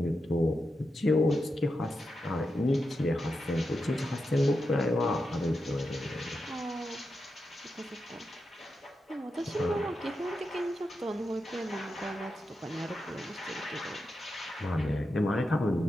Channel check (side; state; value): both; normal; correlation 0.88